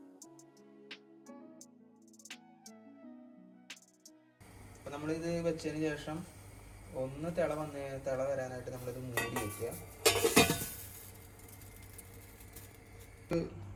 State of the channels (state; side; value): identical; both; correlation 1.00